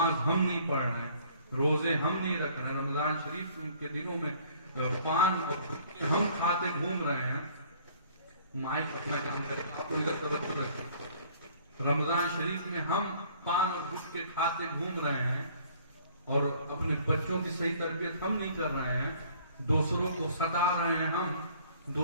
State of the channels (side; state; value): both; inverted; correlation -0.56